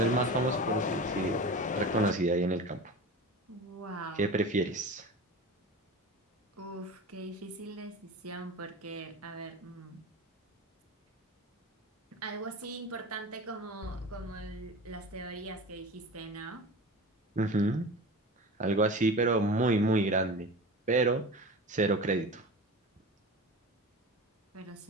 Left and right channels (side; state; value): both; normal; correlation 0.32